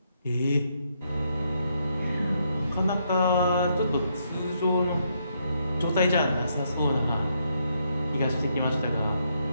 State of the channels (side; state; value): both; inverted; correlation -0.76